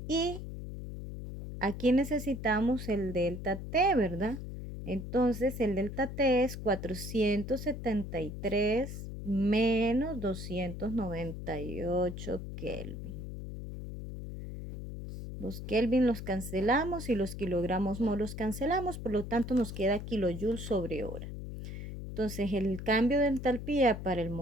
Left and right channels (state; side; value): noise; left; hum, 8 dB below the sound